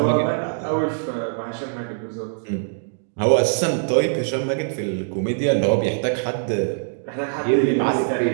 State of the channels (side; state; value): left; silent; digital silence